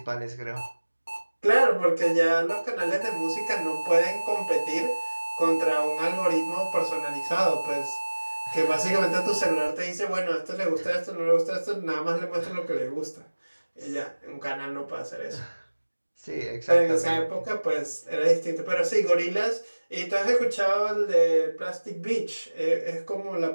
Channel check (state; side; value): inverted; both; correlation -1.00